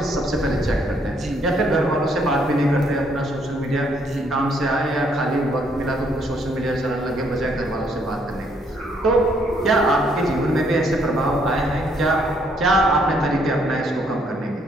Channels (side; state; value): both; normal; correlation 0.69